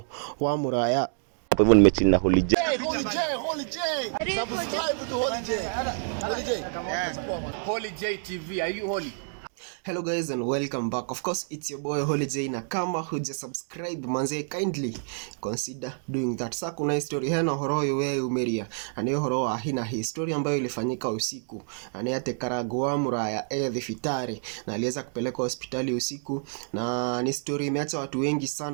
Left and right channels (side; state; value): left; silent; 59 dB below the other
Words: wa Muraya. Hapo hivyo nimechini na Holy J. Subscribe to Holy J TV. Are you holy? Hello guys and welcome back. Of course it's your boy Holy J, na kama huja subscribe manze kindly consider doing that. Sasa kuna history hena horo yowe umeria. Ani horo wa hina history ambayo ilifanyika usiku. Ani ate Karangu wa Muraya thibitari na aliweza kupelekwa hospitali usiku, na ni story imeacha watu wengi